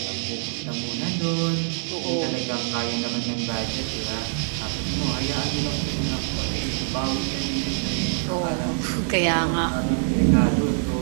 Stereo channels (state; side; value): silent; left; 62 dB below the other